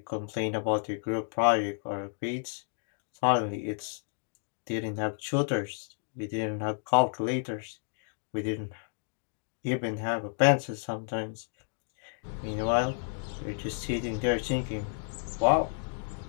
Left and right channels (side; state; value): right; silent; digital silence